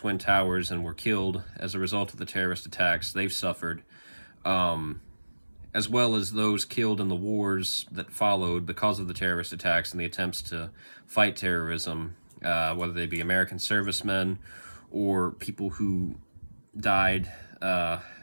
Towers and were killed as a result of the terrorist attacks, they've suffered, as well as those killed in the wars that followed because of the terrorist attacks and the attempts to fight terrorism, whether they be American servicemen or people who died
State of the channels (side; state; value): both; inverted; correlation -1.00